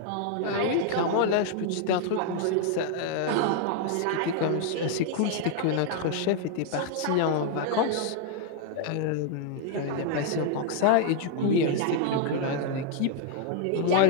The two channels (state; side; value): different; both; correlation 0.00